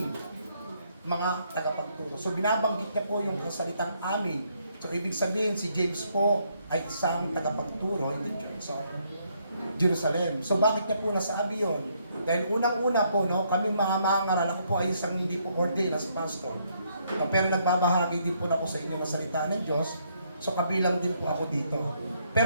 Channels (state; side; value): inverted; both; correlation -0.72